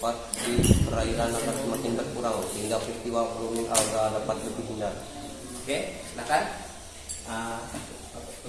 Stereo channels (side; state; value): both; identical; correlation 1.00